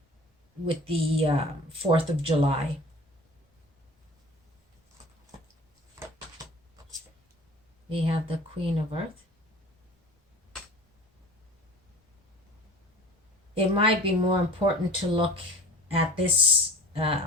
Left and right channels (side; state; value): both; normal; correlation 0.41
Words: 4th of July. We have the Queen of Earth. It might be more important to look at this